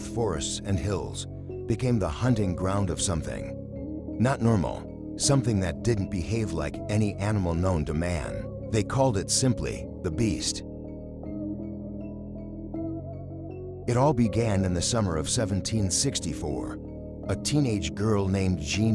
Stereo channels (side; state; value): both; identical; correlation 1.00